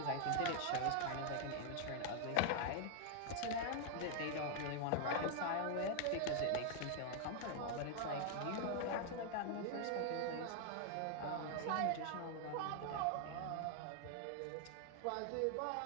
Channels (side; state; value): both; different; correlation 0.00